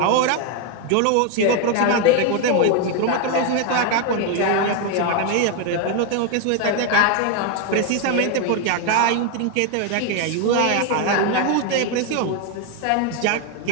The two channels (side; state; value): both; different; correlation 0.01